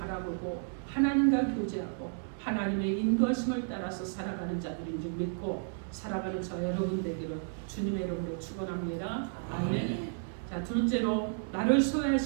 하나님과 교제하고 하나님의 인도하심을 따라서 살아가는 자들인 줄 믿고 살아가는 저 여러분 되기를 주님의 이름으로 축원합니다. 아멘. 자 둘째로 나를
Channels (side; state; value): left; silent; digital silence